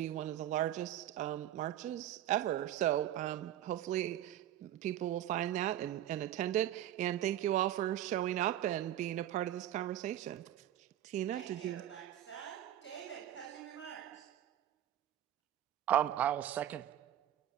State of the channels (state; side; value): quieter; left; 12.1 dB